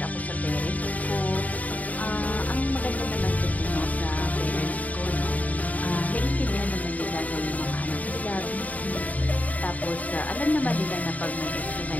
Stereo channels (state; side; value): late; right; 0.072 ms